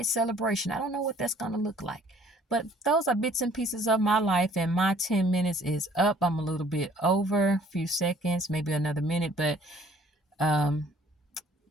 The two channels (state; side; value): normal; both; correlation 0.57